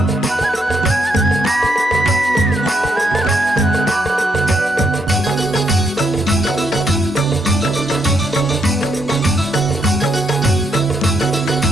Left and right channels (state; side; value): normal; both; correlation 0.77